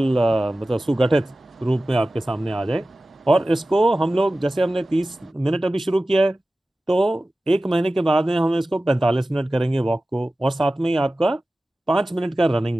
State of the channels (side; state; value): both; normal; correlation 0.96